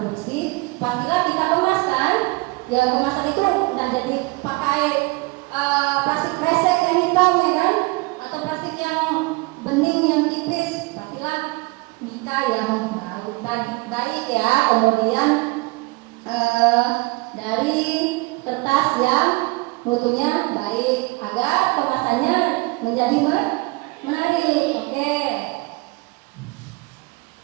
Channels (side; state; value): left; quieter; 25.0 dB